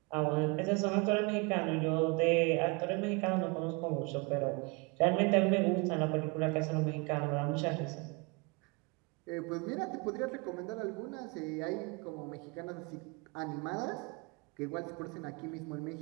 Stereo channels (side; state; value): left; quieter; 29.2 dB